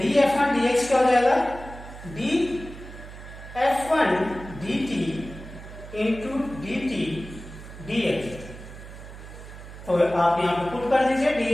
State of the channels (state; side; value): noise; right; hum, 14 dB below the sound